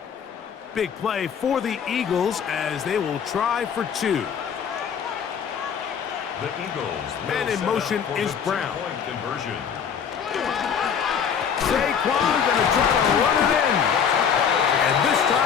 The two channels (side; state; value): right; quieter; 7.4 dB